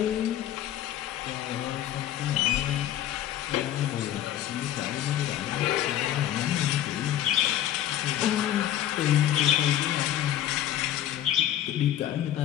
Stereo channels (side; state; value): right; quieter; 11.9 dB